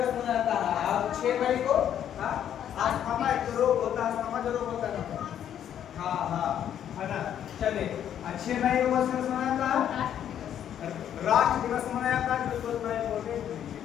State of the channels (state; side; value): quieter; right; 9.9 dB